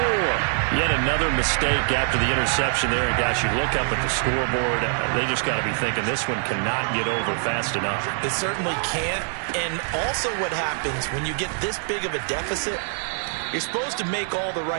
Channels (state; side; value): silent; left; 58 dB below the other